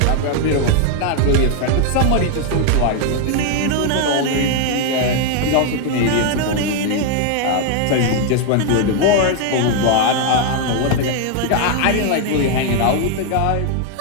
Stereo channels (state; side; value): different; both; correlation 0.00